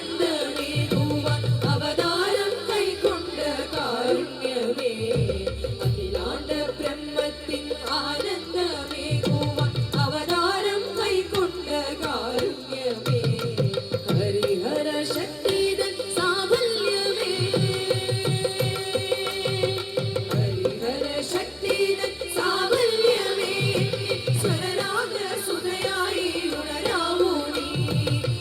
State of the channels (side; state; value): both; identical; correlation 1.00